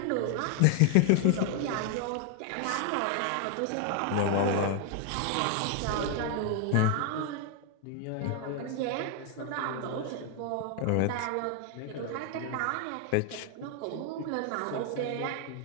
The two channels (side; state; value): both; different; correlation 0.00